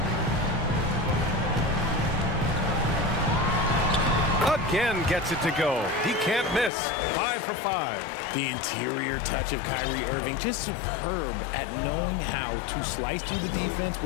Again gets it to go. He can't miss. 5 for 5. The interior touch of Kyrie Irving, just superb at knowing how to slice through the defense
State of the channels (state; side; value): drops out; right; at 6.7 s